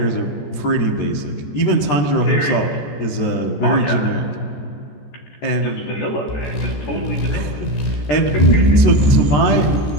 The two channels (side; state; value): right; late; 14 ms